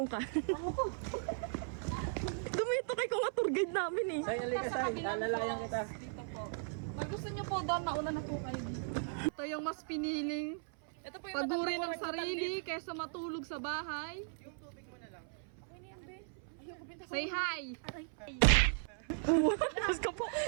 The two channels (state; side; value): silent; left; 53 dB below the other